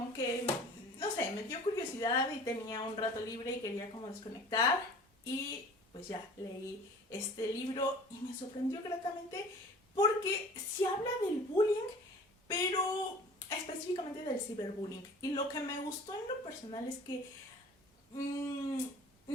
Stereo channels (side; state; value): both; normal; correlation 0.44